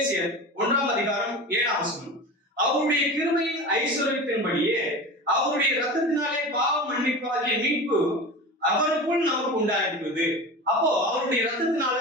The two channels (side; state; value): both; normal; correlation 0.31